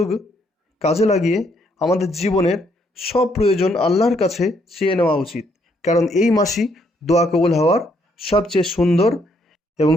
কাজে লাগিয়ে আমাদের জীবনের সব প্রয়োজন আল্লাহর কাছে চেয়ে নেওয়া উচিত, কারণ এই মাসই দোয়া কবুল হওয়ার সবচেয়ে সুন্দর এবং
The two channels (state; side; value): normal; both; correlation 0.71